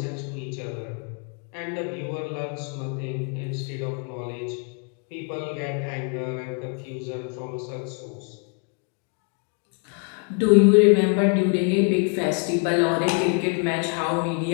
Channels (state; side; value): quieter; right; 39.2 dB